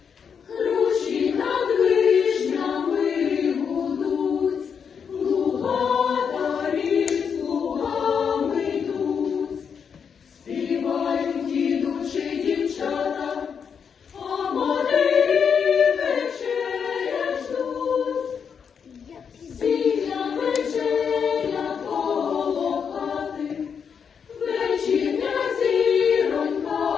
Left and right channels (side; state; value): right; quieter; 6.8 dB